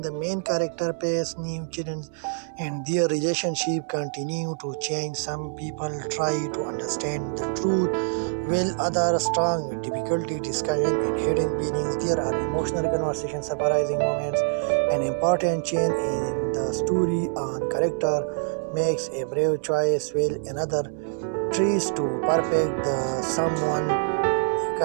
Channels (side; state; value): left; silent; 61 dB below the other